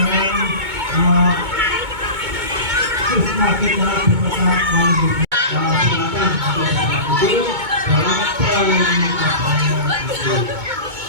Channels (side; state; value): left; late; 2.2 ms